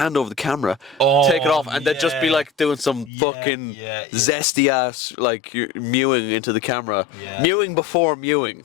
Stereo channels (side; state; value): right; drops out; at 3.1 s